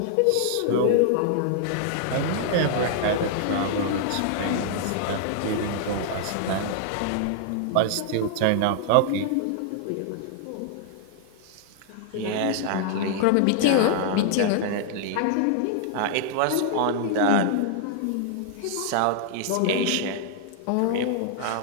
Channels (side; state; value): both; different; correlation -0.01